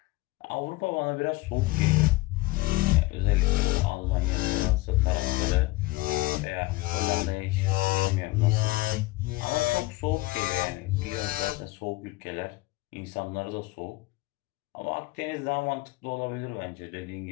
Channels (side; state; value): right; quieter; 20.8 dB